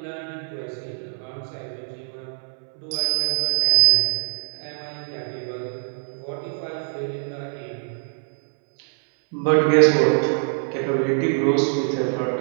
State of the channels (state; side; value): silent; left; 63 dB below the other